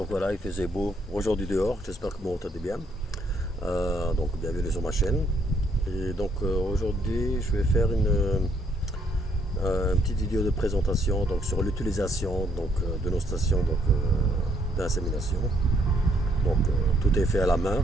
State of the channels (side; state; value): both; normal; correlation 0.69